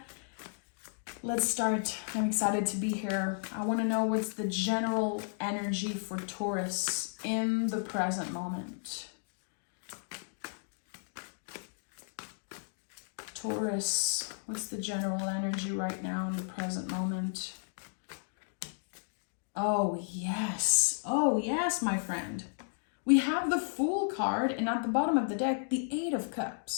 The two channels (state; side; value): silent; right; digital silence